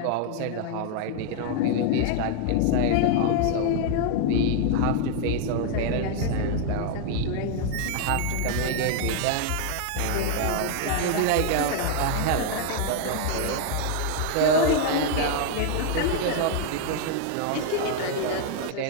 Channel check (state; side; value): different; both; correlation 0.00